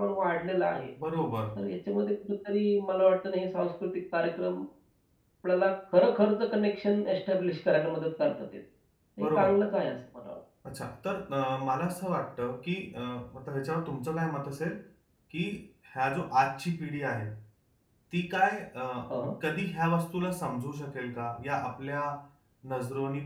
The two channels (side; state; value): both; identical; correlation 1.00